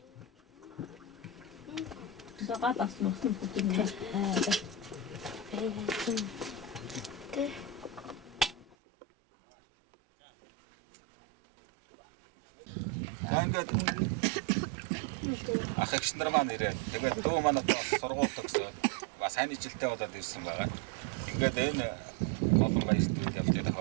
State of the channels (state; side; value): drops out; left; at 8.8 s